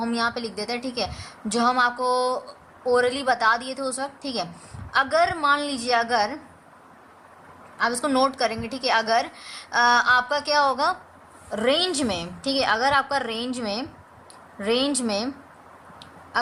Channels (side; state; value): both; identical; correlation 1.00